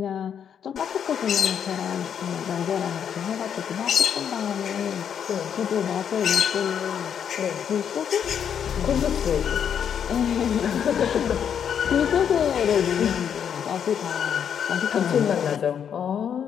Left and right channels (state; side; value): quieter; right; 8.2 dB